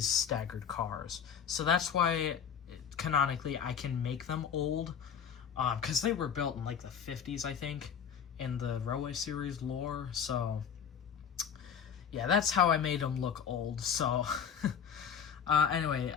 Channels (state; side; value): quieter; right; 7.7 dB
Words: staggered cars. So that's why canonically I can make them old, because they were built in like the 50s, I think, in the Railway Series lore. So yeah, that's how I made them look old. So anyway,